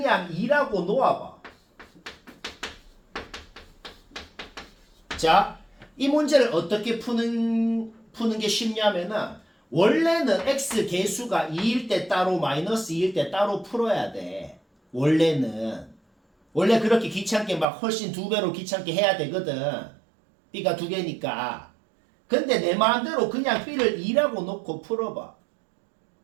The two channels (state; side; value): drops out; left; at 17.7 s